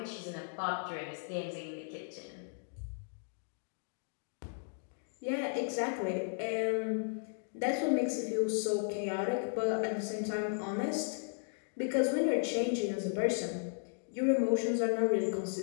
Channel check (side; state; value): right; silent; digital silence